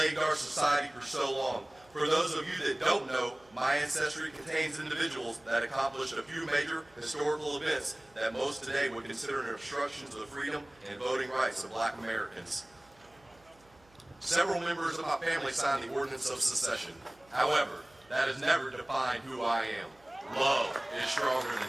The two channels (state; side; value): noise; right; hum, 30 dB below the sound